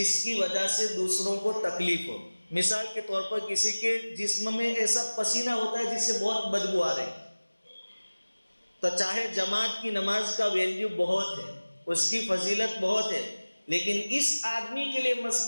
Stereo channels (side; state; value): both; inverted; correlation -1.00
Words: کی وجہ سے دوسروں کو تکلیف ہو۔ مثال کے طور پر کسی کے جسم میں ایسا پسینہ ہوتا ہے جس سے بہت بدبو آ رہی، تو چاہے جماعت کی نماز کا ویلیو بہت ہے، اس کی فضیلت بہت ہے، لیکن اس آدمی کے لیے